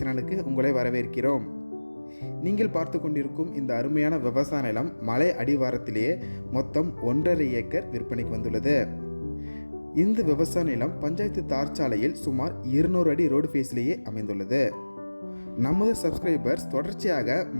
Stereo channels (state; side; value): inverted; both; correlation -1.00